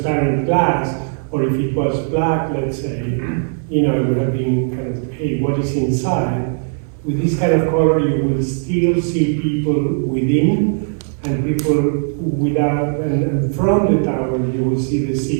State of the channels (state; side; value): silent; left; digital silence